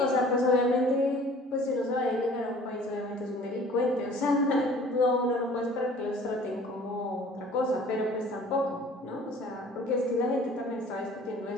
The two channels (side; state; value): both; normal; correlation 0.50